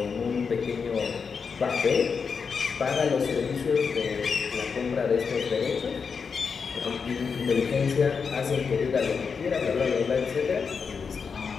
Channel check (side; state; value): right; quieter; 5.7 dB